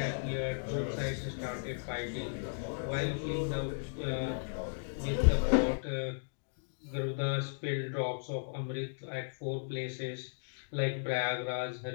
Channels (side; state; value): right; silent; digital silence